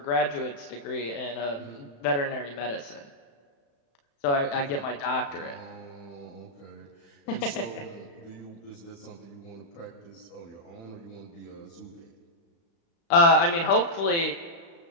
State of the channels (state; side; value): late; right; 35 ms